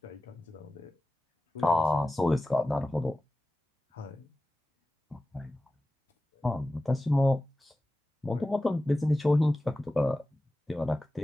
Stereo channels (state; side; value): normal; both; correlation 0.95